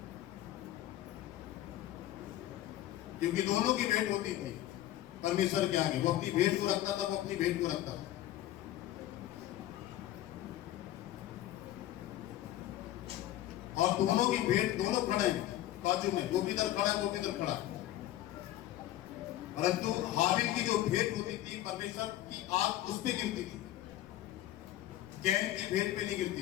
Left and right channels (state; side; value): quieter; right; 14.0 dB